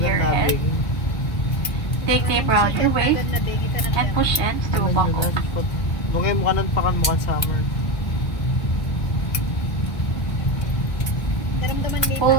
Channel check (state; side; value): late; right; 1.2 ms